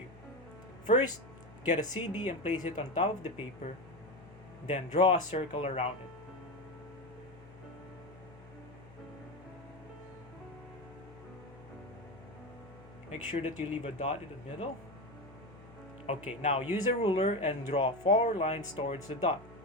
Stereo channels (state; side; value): noise; left; hum, 21 dB below the sound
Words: First, get a CD and place it on top of the paper, then draw a circle around it. Make sure that you leave a dot in the middle. Okay, now use a ruler and draw 4 lines towards the dot.